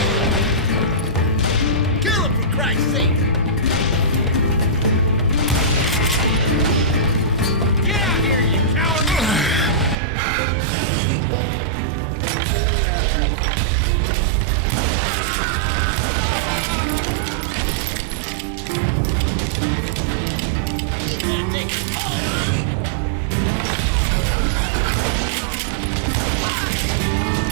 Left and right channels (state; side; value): drops out; left; at 10.0 s